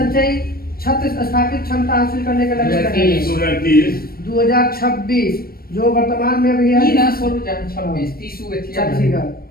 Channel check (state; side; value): late; right; 0.44 ms